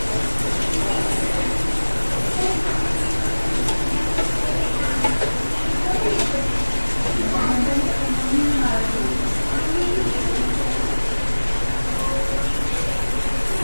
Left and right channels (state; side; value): inverted; both; correlation -1.00